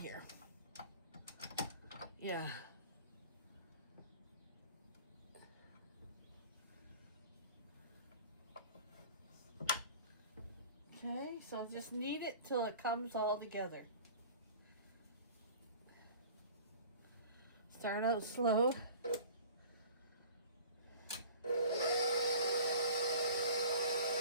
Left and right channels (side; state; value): both; inverted; correlation -0.44